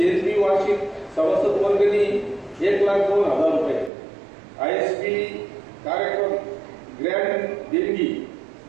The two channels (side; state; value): left; drops out; at 3.9 s